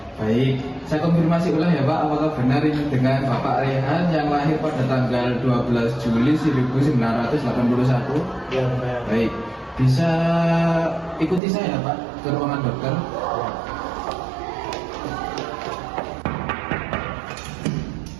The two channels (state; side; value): drops out; left; at 11.4 s